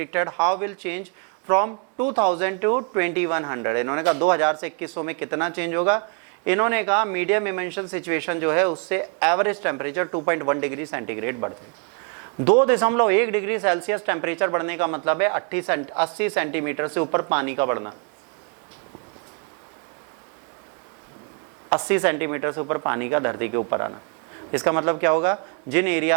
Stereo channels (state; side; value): quieter; left; 36.7 dB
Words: how will change from 2000 to 2100। इन्होंने कहा 2000 से 2100 में कितना चेंज होगा। इन्होंने कहा मीडियम इमेंशन सिचुएशन जो है उससे एवरेज टेम्परेचर 2.1 डिग्री सेंटीग्रेड बढ़ते हैं। 2.1 डिग्री सेल्सियस टेम्परेचर बढ़ने का मतलब है 80 सेंटीमीटर से ऊपर पानी का बढ़ना। 80 सेंटीमीटर से ऊपर पानी का धरती के ऊपर आना। इसका मतलब क्या होगा, जिन